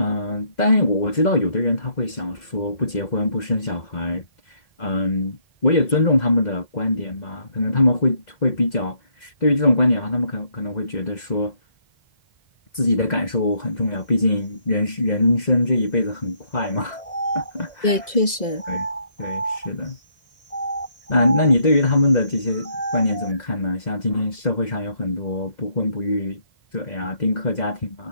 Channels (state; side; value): late; right; 2.0 ms